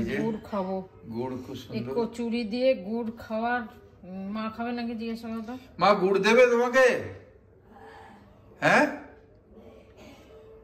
যে গুড় খাবো, গুড় খুব সুন্দর। কচুরি দিয়ে গুড় খাওয়ার, মা খাবে নাকি জিজ্ঞেস করো তো। মা গুড় দেবে তোমাকে? হ্যাঁ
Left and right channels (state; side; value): identical; both; correlation 1.00